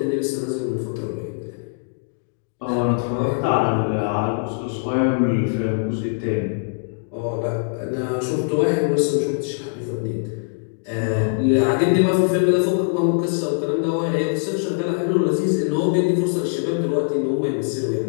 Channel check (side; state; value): right; silent; digital silence